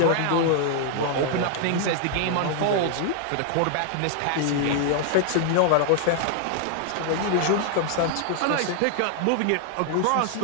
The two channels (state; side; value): different; both; correlation 0.00